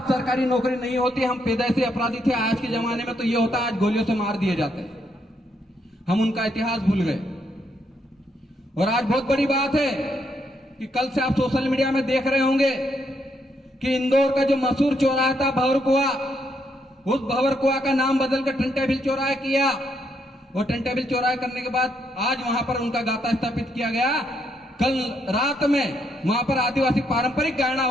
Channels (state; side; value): normal; both; correlation 0.76